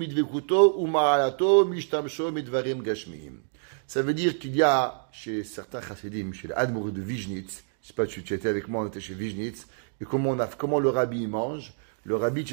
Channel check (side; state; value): left; silent; digital silence